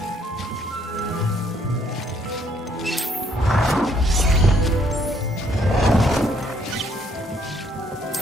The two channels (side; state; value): both; normal; correlation 0.67